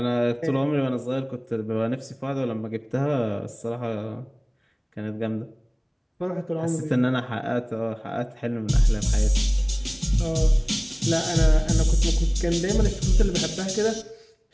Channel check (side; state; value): both; identical; correlation 1.00